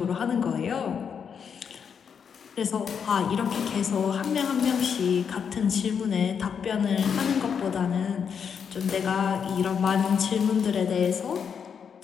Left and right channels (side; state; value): right; quieter; 7.0 dB